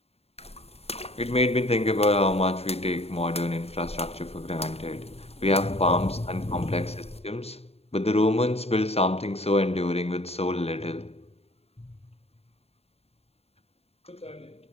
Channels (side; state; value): right; late; 0.30 ms